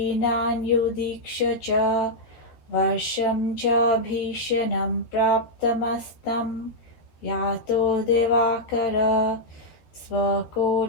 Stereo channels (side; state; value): right; late; 13 ms